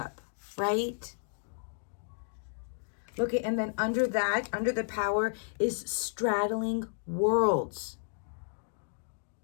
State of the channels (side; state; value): right; silent; digital silence